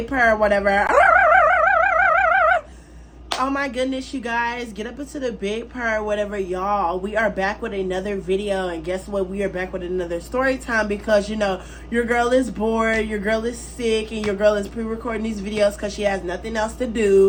purr, whatever. Oh my goodness, you guys, get up into the big purr, whatever, y'all. We are back with another video, and guess what? We are back with another story time because, you know, your girl is bored, your girl is sick, and your girl is pre-recording these videos because she has nothing else to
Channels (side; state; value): both; identical; correlation 1.00